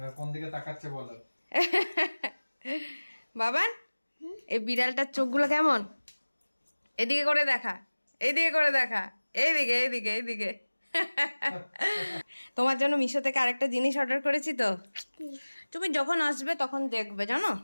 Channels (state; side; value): inverted; both; correlation -1.00